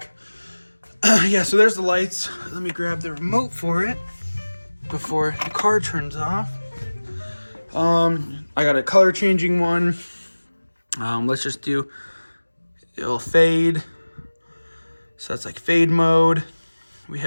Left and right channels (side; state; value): both; inverted; correlation -1.00